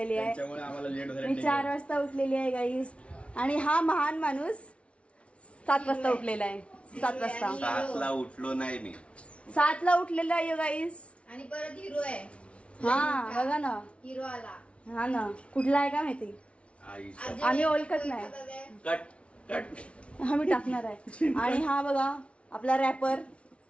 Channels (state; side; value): late; right; 0.061 ms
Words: आहे. त्यामुळे आम्हाला लेट झालं. मी 4 वाजता उठलेली आहे गाईज. आणि हा महान माणूस 7 वाजता उठलेला आहे. 7 वाजता 7ला उठलो नाही मी. 7ला उठलेला आहे गाईज. आणि परत हिरो आहे. हा बघा ना, हिरो आला. हा ना, कुठला आहे का माहिती, आम्ही ओळखत नाही. कट कट आम्ही टाकणार आहे. आणि हा बघा आपला रॅपर